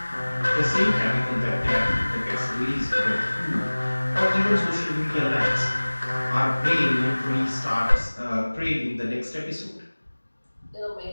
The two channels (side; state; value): both; inverted; correlation -1.00